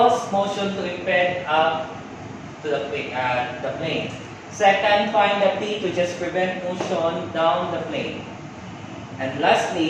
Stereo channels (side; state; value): both; identical; correlation 1.00